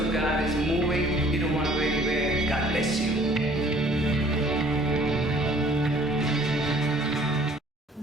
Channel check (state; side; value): normal; both; correlation 0.55